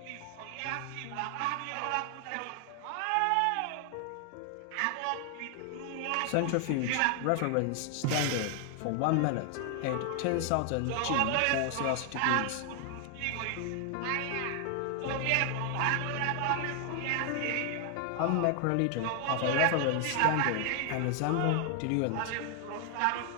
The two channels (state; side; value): different; both; correlation 0.00